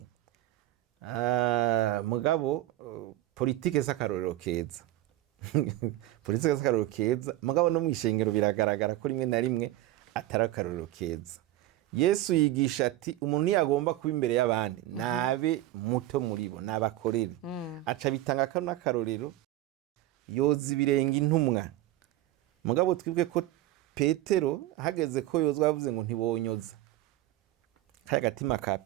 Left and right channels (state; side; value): quieter; left; 15.1 dB